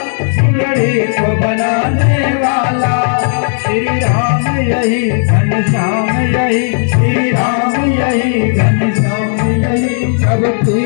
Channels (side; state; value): right; silent; 72 dB below the other